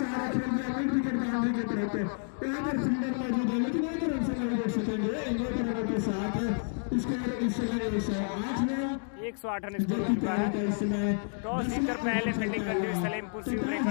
खेल दिया मिड विकेट बाउंड्री की तरफ। यहाँ पर फील्डर मौजूद है, लेकिन 1 रन से नहीं रोक सकेंगे। 1 रनों के साथ स्कोर इस समय 108 है। 108 रन स्कोर हो चुका है। टॉस जीतकर पहले फील्डिंग करते हुए सलेमपुर शिव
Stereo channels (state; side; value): silent; right; 58 dB below the other